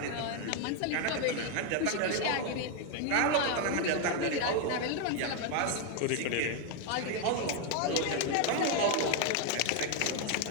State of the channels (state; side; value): different; both; correlation 0.01